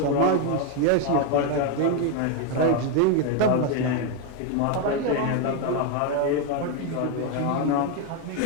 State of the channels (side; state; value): both; different; correlation 0.01